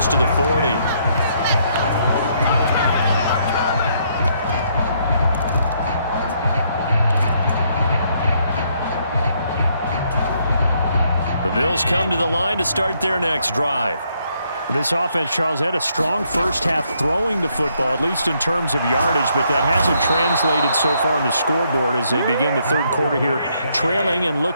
to the 40. The Bills come to the line to start their next drive. This offense, Charles, had a strong first half throwing the football, at least in terms of yardage, but that hasn't translated so far on the scoreboard as they begin the third quarter here, trailing and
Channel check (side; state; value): both; inverted; correlation -0.72